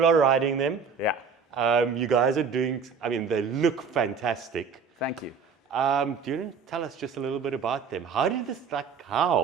are riding them. Yeah. You guys are doing, I mean, they look fantastic. Thank you. Do you want to tell us just a little bit about them? How did this,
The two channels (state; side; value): quieter; left; 5.7 dB